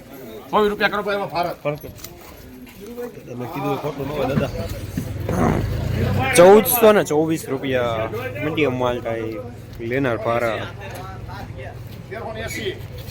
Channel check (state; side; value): identical; both; correlation 1.00